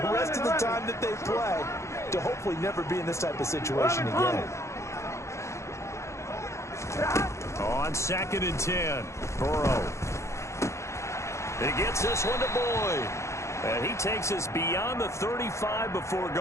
rest of the time that they play to hopefully never be in this type of situation again. On 2nd and 10, Burrow. He gets this one to Boyd. And he takes us beyond the 35 before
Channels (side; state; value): right; late; 0.14 ms